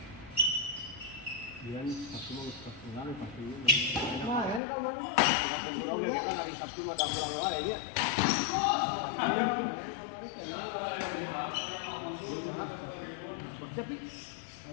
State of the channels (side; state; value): right; drops out; at 4.6 s